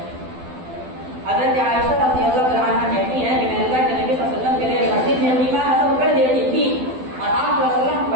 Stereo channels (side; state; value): left; late; 12 ms